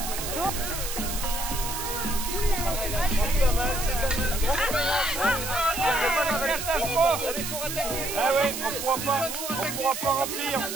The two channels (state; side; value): noise; right; hiss, 5 dB below the sound